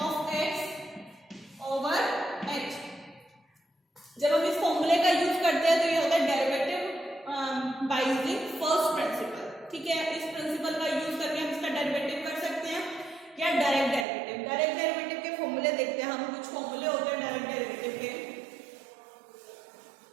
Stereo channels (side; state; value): left; drops out; at 14.1 s